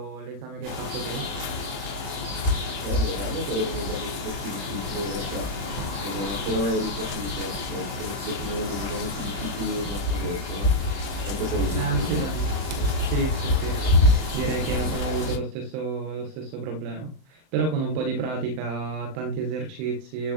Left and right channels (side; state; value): left; late; 37 ms